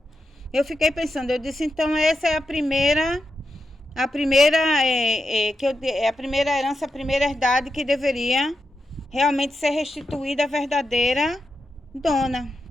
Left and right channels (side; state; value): both; normal; correlation 0.87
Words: eu fiquei pensando, eu disse, então essa é a primeira a primeira herança, a primeira herdade que deveria realmente ser restituída à verdadeira dona.